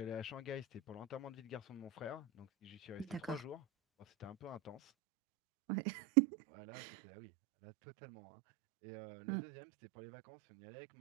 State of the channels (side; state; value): left; drops out; at 4.8 s